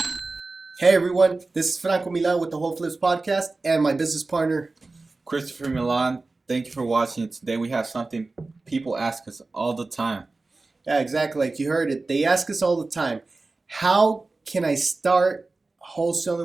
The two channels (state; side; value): quieter; left; 3.5 dB